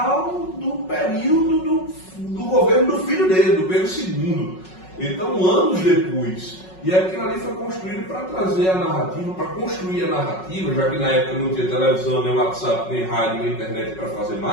do período do governo do filho dele, do Pedro II. Então, anos depois. E aquilo ali foi construído para trazer a narrativa, para construir a narrativa, já que na época não tinha televisão, nem WhatsApp, nem rádio, nem internet para fazer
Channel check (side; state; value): right; late; 5.4 ms